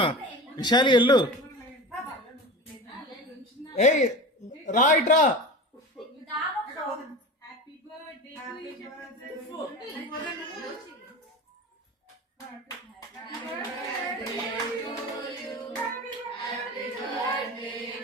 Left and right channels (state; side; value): normal; both; correlation 0.31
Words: విశాలి ఎల్లు. ఏయ్ రా ఇట్రా.